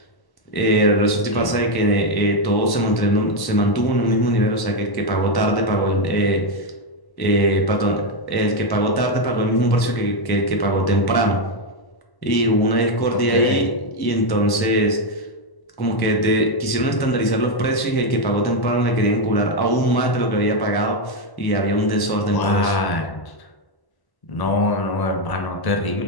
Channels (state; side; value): late; right; 1.1 ms